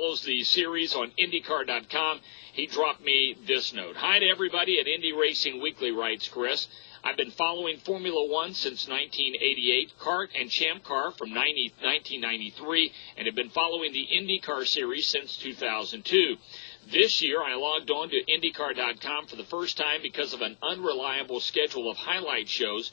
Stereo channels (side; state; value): right; silent; digital silence